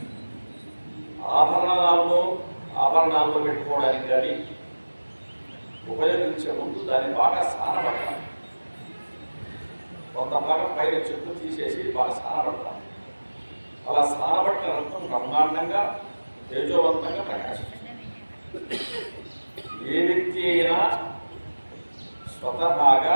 ఆభరణాల్లో పెట్టుకోవడానికి కానీ ఉపయోగించే ముందు దాన్ని బాగా సానబడతాం. కొంత భాగం పైన చెట్టు తీసేసి బాగా సానబడతాం. అలా సానబట్టిన రత్నం బ్రహ్మాండంగా తేజోవంతంగా ప్రకాశిస్తుంది. ఏ వ్యక్తి అయినా స్వతహాగా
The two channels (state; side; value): inverted; both; correlation -1.00